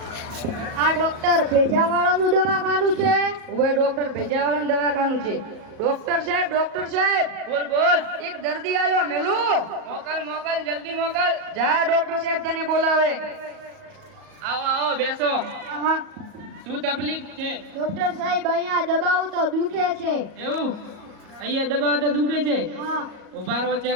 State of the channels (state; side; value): late; left; 38 ms